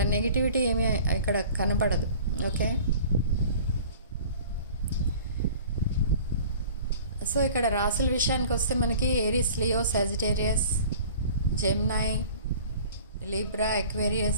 నెగిటివిటీ ఏమీ ఇక్కడ కనపడదు. ఓకే, సో ఇక్కడ రాసుల విషయానికి వస్తే మనకి Aries, Leo, Sagittarius, Gemini, Libra,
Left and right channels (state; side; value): inverted; both; correlation -0.45